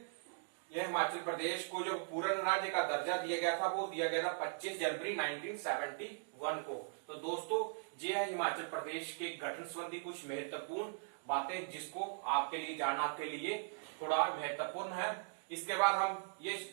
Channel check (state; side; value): silent; left; digital silence